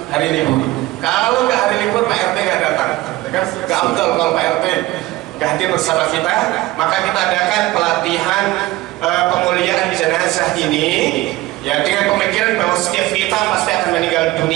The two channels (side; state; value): left; quieter; 18.4 dB